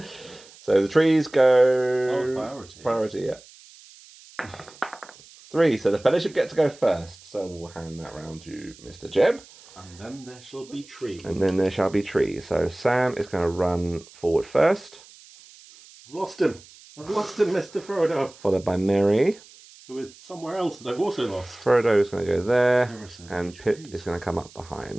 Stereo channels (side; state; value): right; noise; hiss, 23 dB below the sound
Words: So the trees go... Oh, priority. Priority, yeah. 3. So the Fellowship get to go first. So we'll hand that round to Mr. Jeb. And then there shall be trees. So Sam is going to run forward first. I've lost him, Mr. Frodo. Followed by Merry. Who is somewhere else that I've also lost. Frodo is going to go there. So and Pip is going to come up